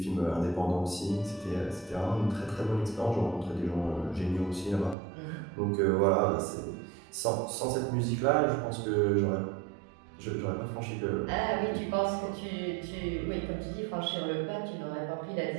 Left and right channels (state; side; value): drops out; left; at 5.0 s